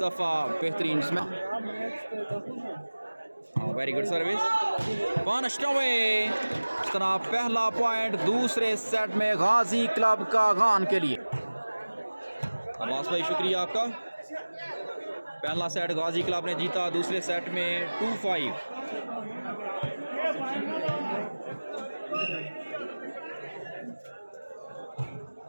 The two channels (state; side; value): inverted; both; correlation -1.00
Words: दफा बेहतरीन smash, very good service, punished away. इस तरह पहला पॉइंट दूसरे सेट में गाजी क्लब कागान के लिए। अब्बास भाई शुक्रिया आपका। पहला सेट गाजी क्लब ने जीता, दूसरे सेट में 2-5।